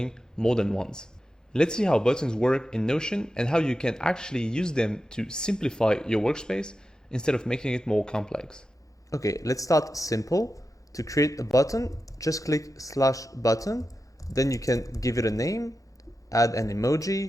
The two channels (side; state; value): both; normal; correlation 0.91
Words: more than once. Let's see how buttons work in Notion and how you can actually use them to simplify your workspace instead of making it more complex. Okay, let's start simple. To create a button, just click /button, then you can give it a name, add an